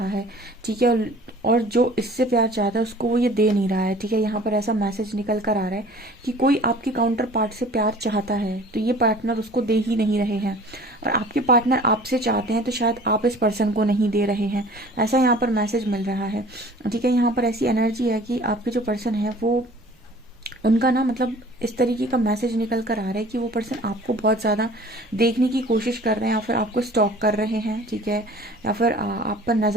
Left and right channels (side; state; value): both; normal; correlation 0.47